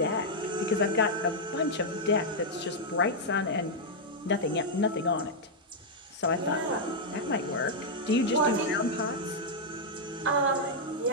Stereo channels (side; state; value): both; normal; correlation -0.04